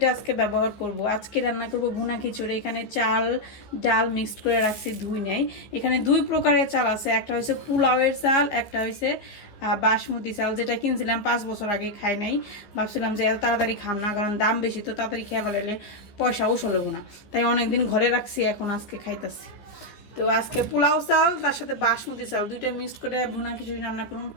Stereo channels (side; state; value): right; late; 15 ms